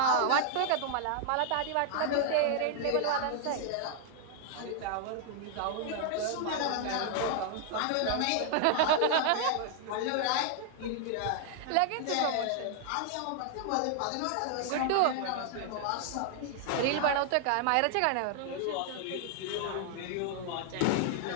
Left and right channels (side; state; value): both; different; correlation 0.00